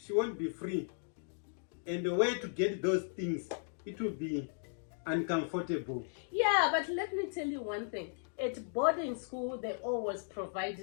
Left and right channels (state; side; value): silent; right; digital silence